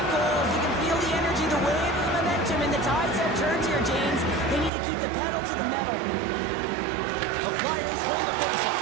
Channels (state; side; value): drops out; left; at 4.7 s